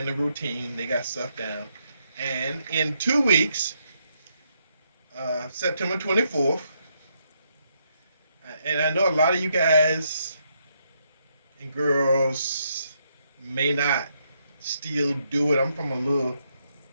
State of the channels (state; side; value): inverted; both; correlation -0.77